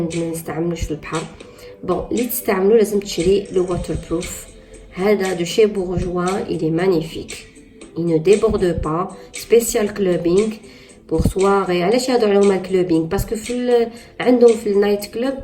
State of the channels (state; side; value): identical; both; correlation 1.00